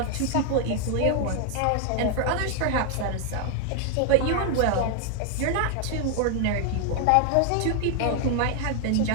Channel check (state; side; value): different; both; correlation 0.00